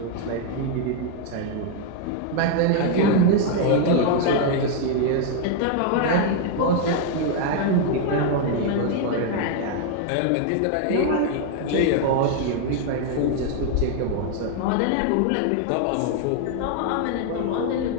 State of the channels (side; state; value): both; different; correlation 0.00